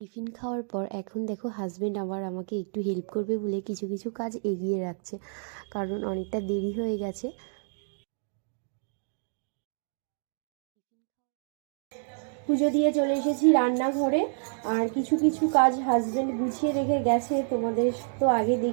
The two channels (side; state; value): left; silent; digital silence